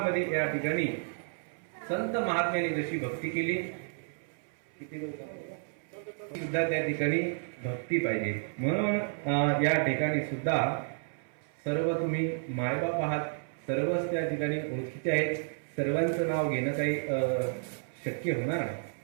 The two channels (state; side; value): silent; left; 57 dB below the other